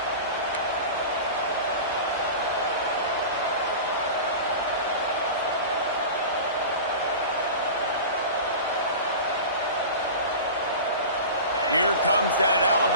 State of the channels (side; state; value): both; inverted; correlation -0.33